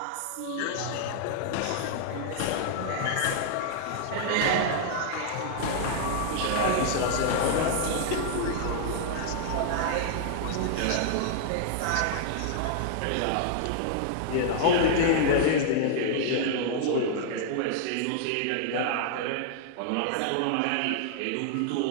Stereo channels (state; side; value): different; both; correlation -0.01